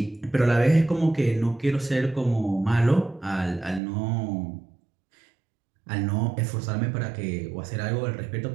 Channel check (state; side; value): drops out; left; at 3.8 s